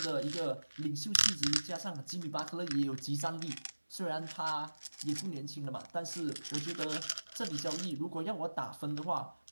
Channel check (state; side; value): inverted; both; correlation -1.00